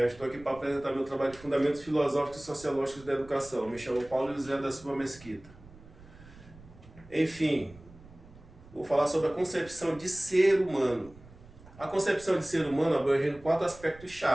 Estou aqui para apresentar meu trabalho de Fundamentos Filosóficos e Sociológicos da Educação. Me chamo Paulo José da Silva Mesquita. Enfim, vou falar sobre a concepção de ser humano. A concepção de ser humano abrange 4 aspectos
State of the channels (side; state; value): right; noise; rumble, 21 dB below the sound